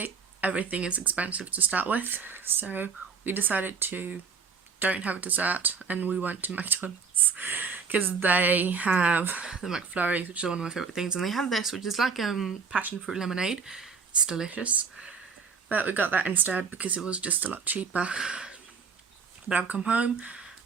everything is expensive to start with, so we decided to don't have a dessert, and we went to McDonald's because they have the McFlurries, which is one of my favourite things, and they have this, which is like passion fruit lemonade. It's delicious, but we got that instead because it was just a lot cheaper. But I've come home.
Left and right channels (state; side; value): quieter; left; 5.5 dB